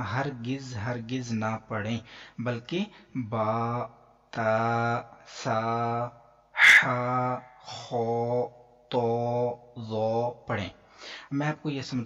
ہرگز نہ پڑھیں، بلکہ با، تا، سا، حا، خو، تو، زو پڑھیں. میں آپ کو یہ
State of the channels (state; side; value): identical; both; correlation 1.00